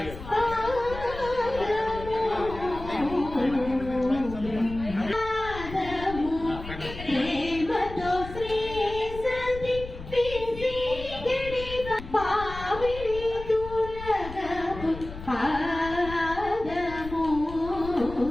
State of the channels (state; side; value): noise; left; rumble, 12 dB below the sound